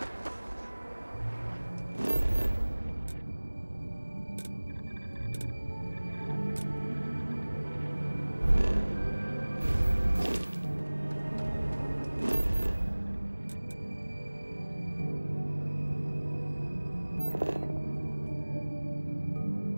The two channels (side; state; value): both; inverted; correlation -1.00